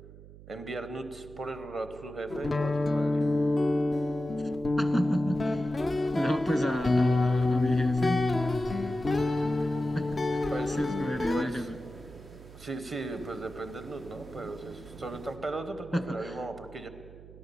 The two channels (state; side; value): noise; right; hum, 18 dB below the sound